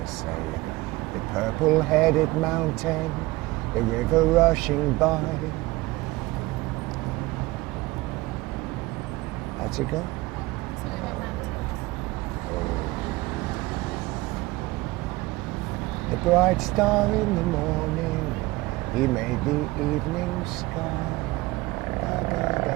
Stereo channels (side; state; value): left; quieter; 20.5 dB